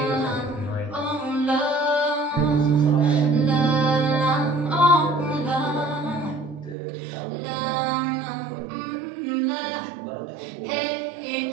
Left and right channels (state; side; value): drops out; left; at 6.8 s